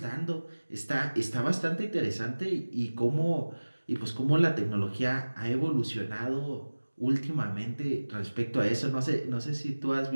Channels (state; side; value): inverted; both; correlation -1.00